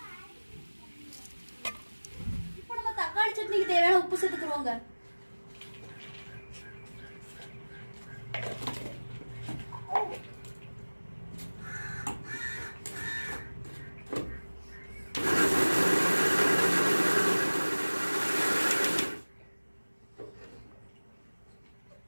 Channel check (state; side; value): inverted; both; correlation -1.00